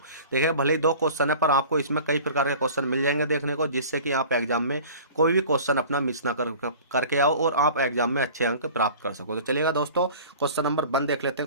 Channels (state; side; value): inverted; both; correlation -0.42